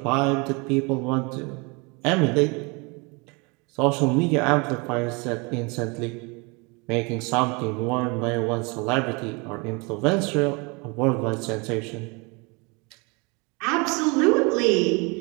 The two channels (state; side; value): quieter; left; 29.4 dB